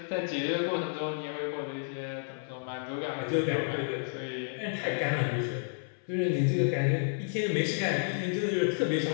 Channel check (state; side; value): silent; right; 57 dB below the other